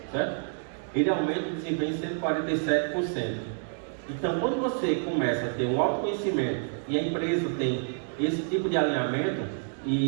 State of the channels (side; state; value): left; silent; 59 dB below the other